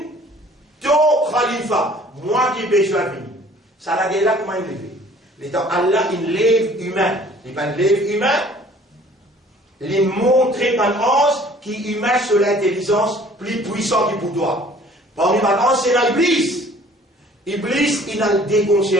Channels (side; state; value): both; normal; correlation 0.53